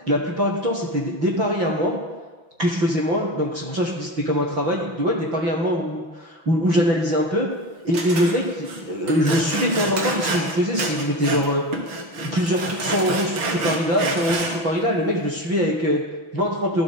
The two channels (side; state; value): left; late; 6.1 ms